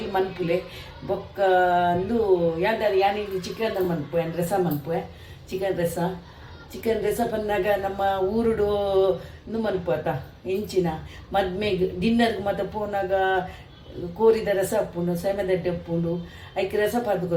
ಮನ್ಪುಲೆ ಬೊಕ್ಕ ಅಂದು ಯಾನಿಗೆ ಚಿಕನ್ ಮನ್ಪು ರೆಸ ಮನ್ಪು ಚಿಕನ್ ರೆಸ ಬಂದಾಗ ನಮ್ಮ ಊರುಡು ಮನ್ಪು ಆತ ಹೆಂಚಿನ ಮದ್ಮೆಗೆ ಡಿನ್ನರ್ಗೆ ಮತ್ತೆ ಪೋನಾಗ ಕೋರಿದ ರಸ ಹಾಪುಂಡು ಸೆಮೆದಡ್ಡೆ ಉಪ್ಪುಂಡು ಐಕೆ ರಸ ಪಾರ್ದು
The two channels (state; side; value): identical; both; correlation 1.00